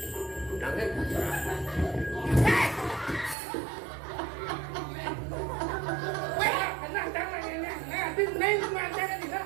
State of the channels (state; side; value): drops out; left; at 3.4 s